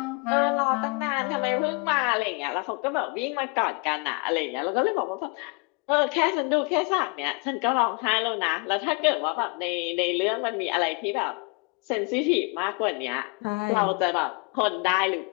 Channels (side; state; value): right; quieter; 32.7 dB